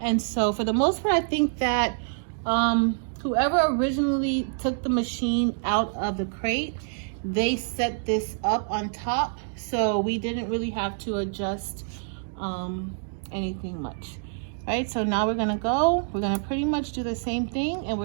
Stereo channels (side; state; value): left; silent; digital silence